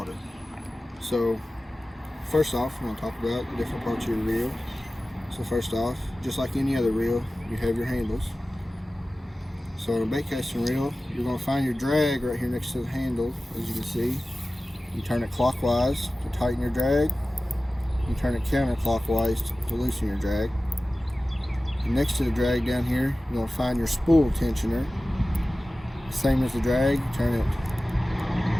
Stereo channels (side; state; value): both; normal; correlation 0.96